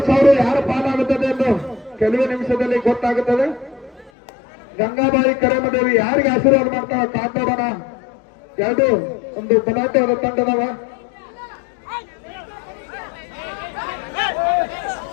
ಯಾರ ಪಾಲಾಗುತ್ತದೆ ಎಂದು ಕೆಲವೇ ನಿಮಿಷದಲ್ಲಿ ಗೊತ್ತಾಗುತ್ತದೆ. ಗಂಗಾಬಾಯಿ ಕರೇಮದೇವಿ ಯಾರಿಗೆ ಆಶೀರ್ವಾದ ಮಾಡ್ತಾವ ಕಾತೋಡೋಣ. ಒಂದು ಬಲಾಟೆಯವರ ತಂಡದವ.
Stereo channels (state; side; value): drops out; right; at 4.1 s